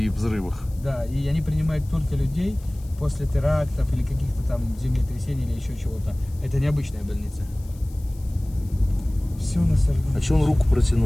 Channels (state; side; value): noise; left; hiss, 25 dB below the sound